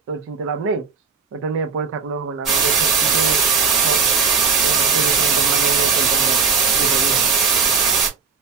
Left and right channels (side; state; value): left; quieter; 5.4 dB